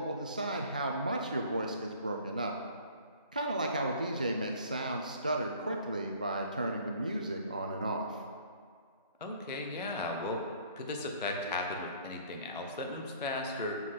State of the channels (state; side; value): inverted; both; correlation -0.53